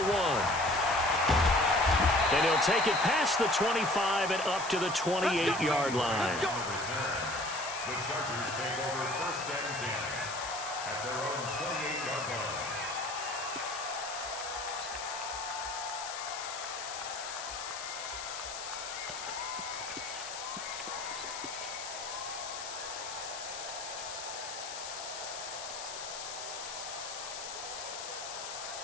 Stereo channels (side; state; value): left; noise; hiss, 8 dB below the sound